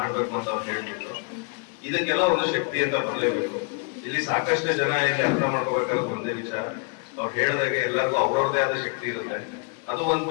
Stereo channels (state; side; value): quieter; right; 33.9 dB